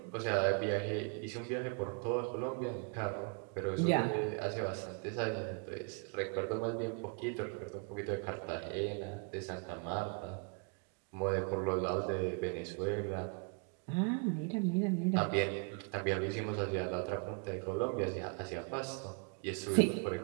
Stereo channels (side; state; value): left; quieter; 37.7 dB